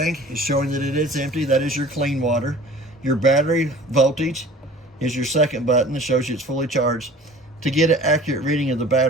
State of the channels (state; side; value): normal; both; correlation 0.45